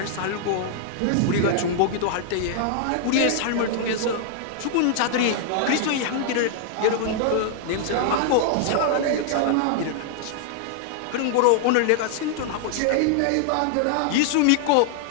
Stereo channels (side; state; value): both; different; correlation -0.01